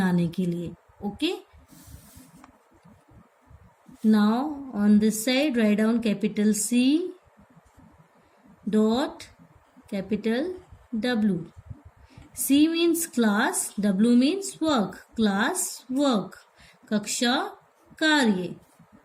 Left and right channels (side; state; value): both; identical; correlation 1.00